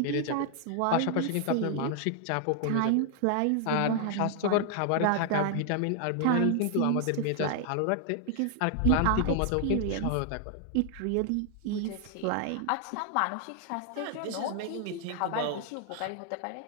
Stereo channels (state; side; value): different; both; correlation 0.00